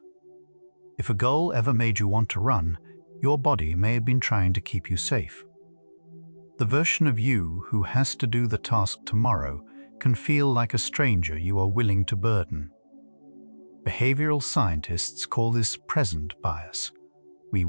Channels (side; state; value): both; inverted; correlation -1.00